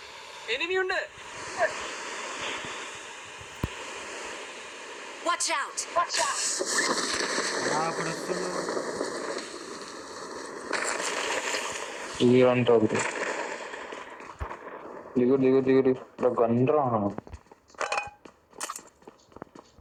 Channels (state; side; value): identical; both; correlation 1.00